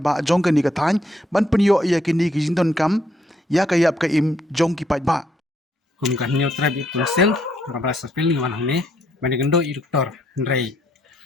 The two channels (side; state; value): both; normal; correlation 0.72